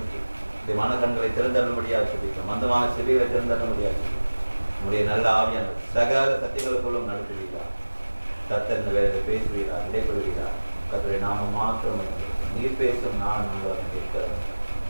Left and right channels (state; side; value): inverted; both; correlation -1.00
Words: இந்த மனக்கண்களை திறந்தரும்படியாக சொல்லிக்கிறோம். மந்தமான செவிகளை திறந்தரும்படியாக சொல்லி நம்முடைய நல்ல ஆவியான சகல சத்தியங்களுக்குள்ளும் நடத்துவீரார். கர்த்தர் இந்த வேலையில் பேசுவீரார், இடைப்படுவீரார். கர்த்தருடைய நாம மாற்றம் நீர் பேசும் நான் நாங்கள் இருக்கிற